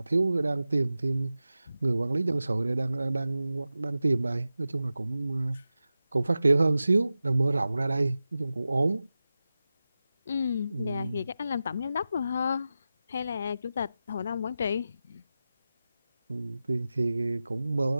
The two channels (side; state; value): both; inverted; correlation -0.93